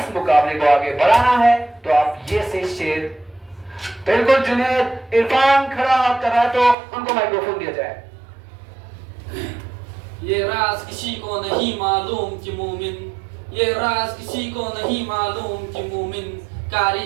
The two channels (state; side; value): drops out; left; at 6.8 s